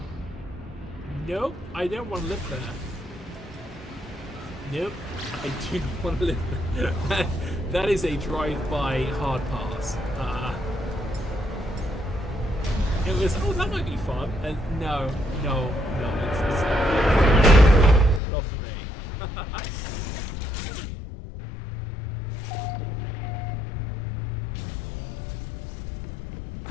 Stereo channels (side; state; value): right; drops out; at 18.2 s